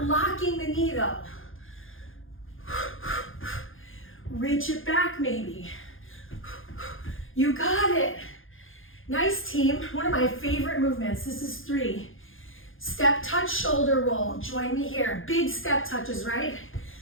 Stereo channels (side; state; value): right; late; 0.59 ms